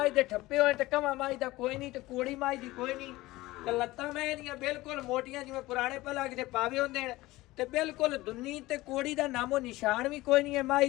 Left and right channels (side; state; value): right; quieter; 18.8 dB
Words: दे ठप्पे होए ते कमा माई दा कोई नहीं ते कोड़ी माई दी कोई नहीं ते लत्तां मैं दियां बिल्कुल मोटियां जिवें पुराने पलग दे पावे होंदे ने ते बिल्कुल दुन्नी ते कोड़ी दा नामो निशान भी कोई नहीं है